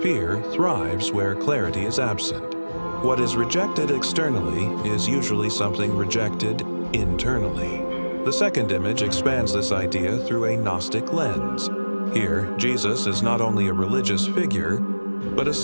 Fear thrives where clarity is absent. What is rejected externally is usually something rejected internally. The second image expands this idea through a Gnostic lens. Here, Jesus is not only a religious figure, but a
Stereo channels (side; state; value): both; inverted; correlation -1.00